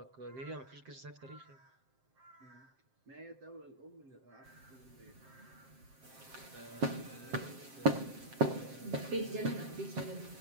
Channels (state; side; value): late; left; 7.6 ms